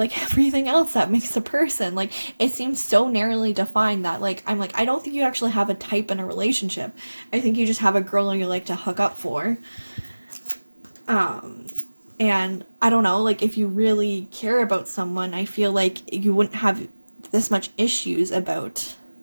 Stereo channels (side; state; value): both; inverted; correlation -1.00